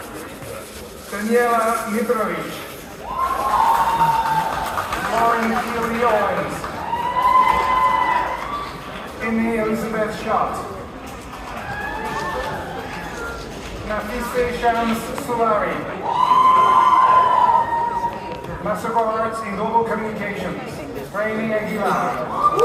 Daniela Mitrovic. Lauren Keely Owens. Amy Elizabeth Schott. Nafise Shams Sulari. Master of Arts in Global Communications, Rainy Aguilar.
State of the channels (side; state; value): both; identical; correlation 1.00